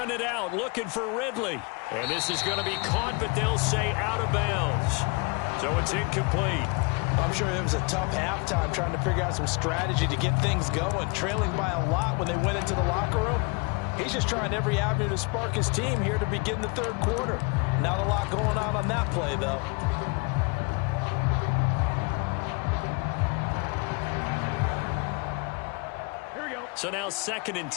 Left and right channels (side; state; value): right; quieter; 30.7 dB